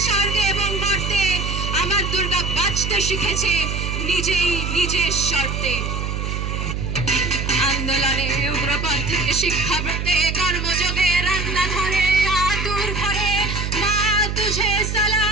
স্বর্গে এবং মর্তে আমার দুর্গা বাঁচতে শিখেছে নিজেই নিজের শর্তে আন্দোলনে উগ্রপন্থ থেকে শিক্ষা পেতে কর্মযোগে রান্নাঘরে আতুর ঘরে মা তুঝে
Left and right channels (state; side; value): noise; right; hum, 3 dB below the sound